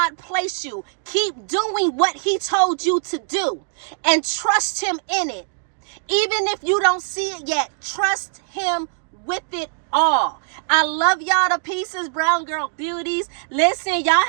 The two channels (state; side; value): silent; left; digital silence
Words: placed you. Keep doing what he told you to do and trust him in it. Even if you don't see it yet, trust him with it all. I love y'all to pieces, Brown Girl Beauties. Listen, y'all